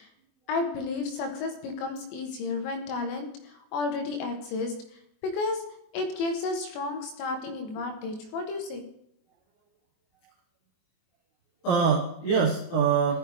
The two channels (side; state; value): right; late; 24 ms